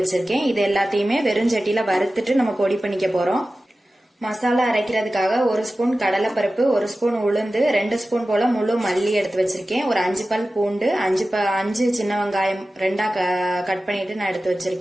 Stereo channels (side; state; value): both; normal; correlation 0.95